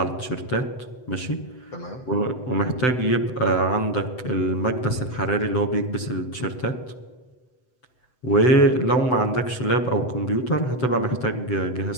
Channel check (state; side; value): late; right; 7.9 ms